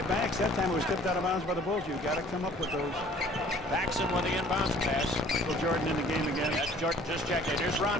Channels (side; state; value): both; normal; correlation 0.53